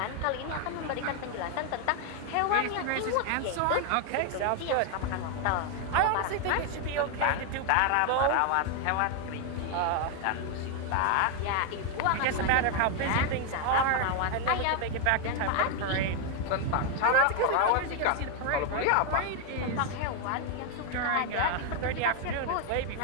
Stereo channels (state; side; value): different; both; correlation 0.01